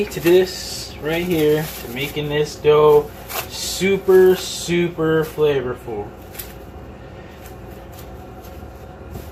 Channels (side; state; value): both; identical; correlation 1.00